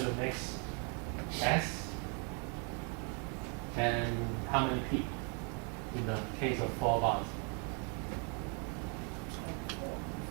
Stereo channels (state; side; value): quieter; left; 37.3 dB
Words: going to mix S and how many P in the case of 4 bonds?